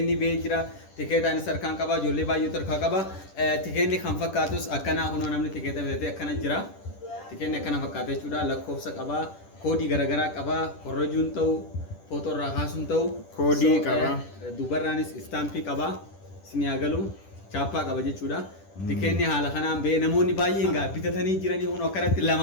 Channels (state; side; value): late; right; 10 ms